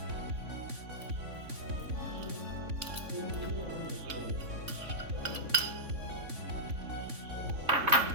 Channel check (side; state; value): left; late; 3.5 ms